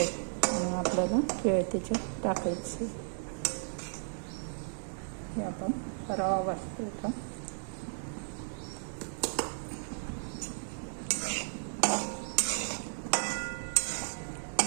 आणि आपल्याला केळ त्याच्यात टाकायचे. हे आपण रवा भाजतो.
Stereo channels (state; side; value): silent; left; digital silence